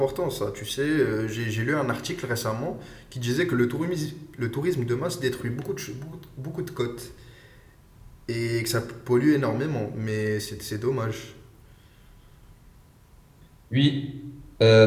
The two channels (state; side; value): identical; both; correlation 1.00